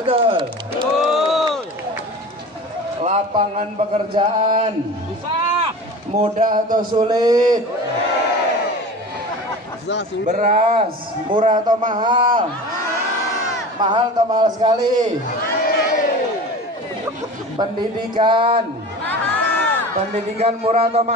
Betul. Lapangan pekerjaan mudah atau sulit? Beras murah atau mahal? Mahal atau mahal sekali? Pendidikan? Pendidikan murah atau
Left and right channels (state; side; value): normal; both; correlation 0.35